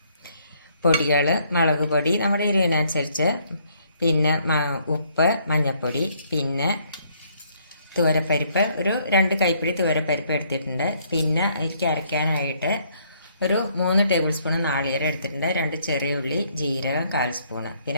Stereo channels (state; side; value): inverted; both; correlation -0.67